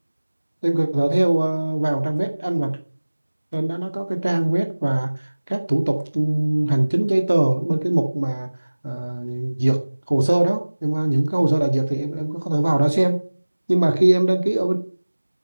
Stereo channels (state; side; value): inverted; both; correlation -1.00